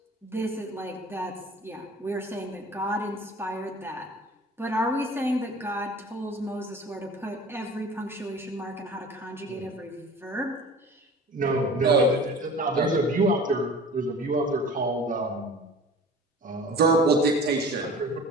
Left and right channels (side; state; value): both; normal; correlation 0.42